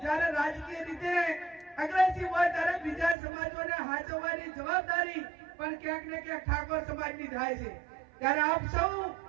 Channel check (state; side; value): drops out; left; at 3.2 s